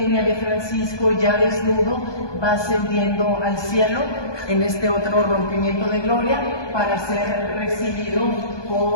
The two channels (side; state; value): right; late; 1.2 ms